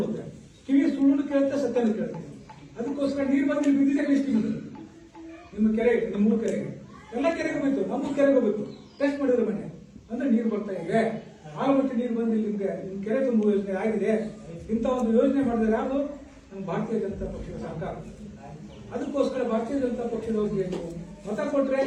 ಕಿವಿ ಸುಳ್ಳು ಕೇಳುತ್ತೆ, ಸತ್ಯನ ಕೇಳುತ್ತೆ. ಅದಕ್ಕೋಸ್ಕರ ನೀರು ಬಂದು ಇಲ್ಲಿ ಬಿದ್ದಿದೆ ಕಳಿಸ್ತೀವಿ. ನಿಮ್ಮ ಕೆರೆಗೆ, ನಿಮ್ಮ ಮೂರು ಕೆರೆಗೆ, ಎಲ್ಲ ಕೆರೆಗೆ ಹೋಗ್ಬೇಕು, ನಮ್ಮ ಕೆರೆಗೆ ಹೋಗ್ಬೇಕು. ಟೆಸ್ಟ್ ಮಾಡಿದ್ರೆ ಮನೆ ಅಂದ್ರೆ ನೀರು ಬರ್ತಾ ಇದೆ. ಆಲಮಟ್ಟಿ ನೀರು ಬಂದು ನಿಮ್ಗೆ ನಿಮ್ ಕೆರೆ ತುಂಬುವ ಯೋಜನೆ ಆಗಿದೆ. ಇಂಥ ಒಂದು ಯೋಜನೆ ಮಾಡಿದ್ರೆ ಯಾವುದು ನಮ್ಮ ಭಾರತೀಯ ಜನತಾ ಪಕ್ಷದ ಸರ್ಕಾರ. ಅದಕ್ಕೋಸ್ಕರ ಭಾರತೀಯ ಜನತಾ ಪಕ್ಷದವ್ರಿಗೆ ನೀವು ಮತ ಕೊಟ್ರೆ,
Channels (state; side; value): identical; both; correlation 1.00